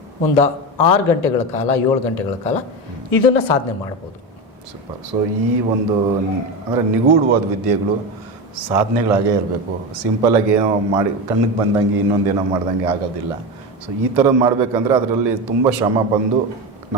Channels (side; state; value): both; normal; correlation 0.20